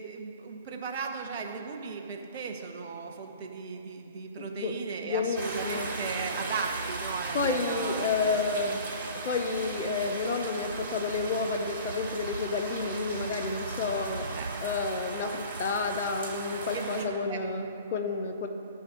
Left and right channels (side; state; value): both; inverted; correlation -0.41